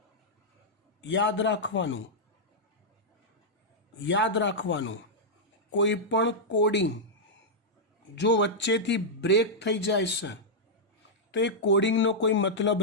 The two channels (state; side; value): normal; both; correlation -0.07